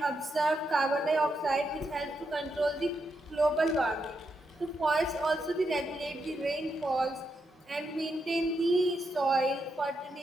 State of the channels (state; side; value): normal; both; correlation 0.82